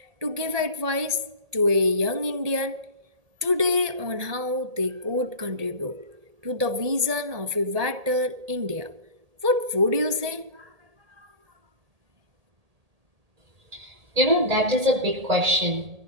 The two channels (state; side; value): late; left; 1.8 ms